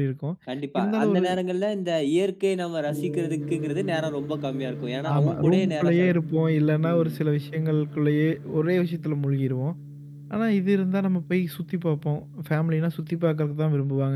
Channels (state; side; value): identical; both; correlation 1.00